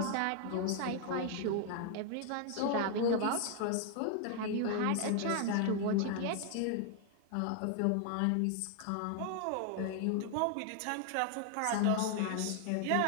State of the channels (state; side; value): different; both; correlation 0.00